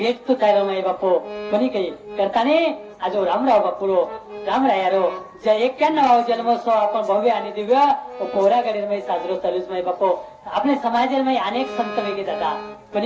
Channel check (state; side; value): identical; both; correlation 1.00